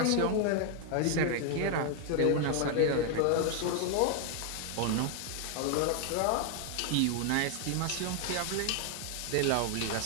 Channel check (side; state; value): both; different; correlation 0.00